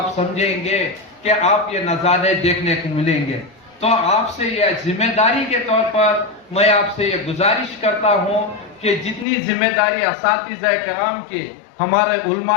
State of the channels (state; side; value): drops out; right; at 9.2 s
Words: سمجھیں گے کہ آپ یہ نظارے دیکھنے کو ملیں گے. تو آپ سے یہ ذمہ داری کے طور پر میں آپ سے یہ گزارش کرتا ہوں کہ جتنی ذمہ داری اساتذہ کرام کے، ہمارے